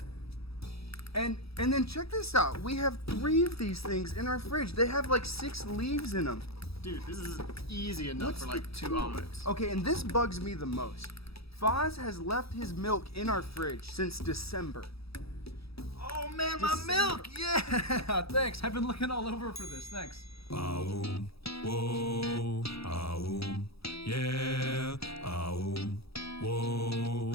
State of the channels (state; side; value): late; right; 0.77 ms